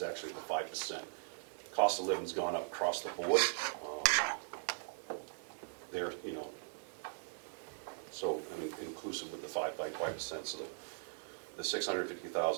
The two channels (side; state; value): left; silent; digital silence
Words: actually the 5%. Cost of living's gone up across the board. So I mean, inclusive with the 5%. So the